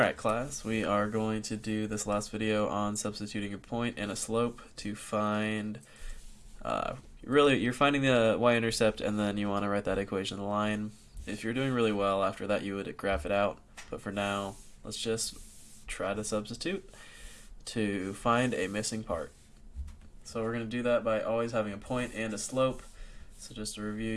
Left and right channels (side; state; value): both; identical; correlation 1.00